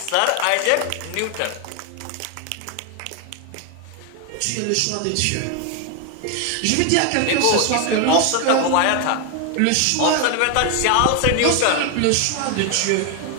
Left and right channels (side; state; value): both; different; correlation 0.01